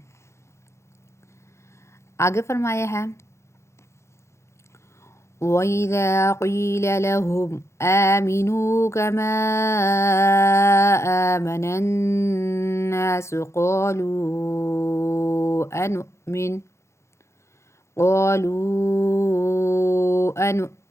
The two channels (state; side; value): late; right; 0.13 ms